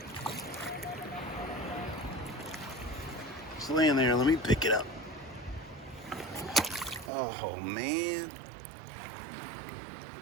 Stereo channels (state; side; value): drops out; left; at 7.1 s